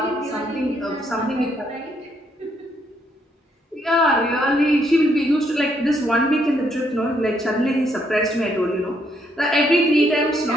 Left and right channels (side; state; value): both; normal; correlation 0.73